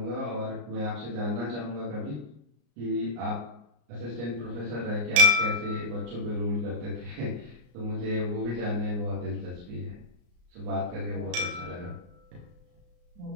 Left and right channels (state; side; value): late; left; 34 ms